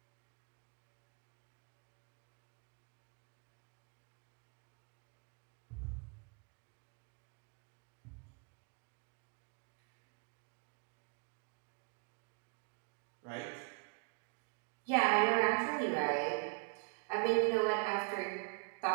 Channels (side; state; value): left; quieter; 33.1 dB